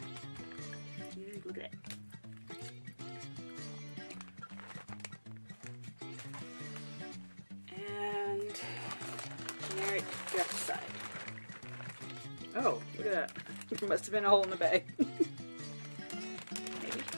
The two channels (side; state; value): both; inverted; correlation -1.00